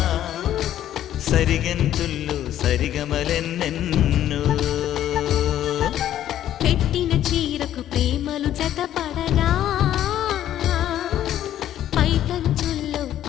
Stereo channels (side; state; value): right; quieter; 11.8 dB